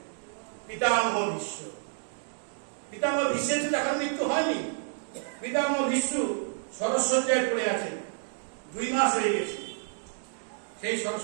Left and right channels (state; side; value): silent; left; digital silence